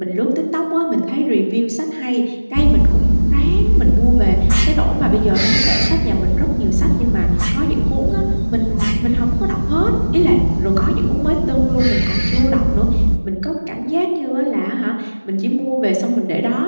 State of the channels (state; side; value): inverted; both; correlation -1.00